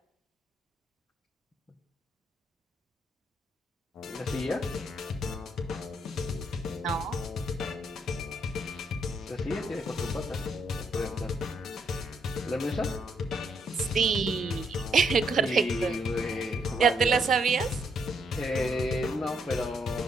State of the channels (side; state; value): both; normal; correlation 0.74